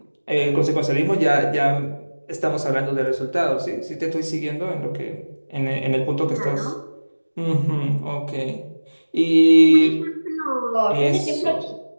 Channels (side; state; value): both; inverted; correlation -1.00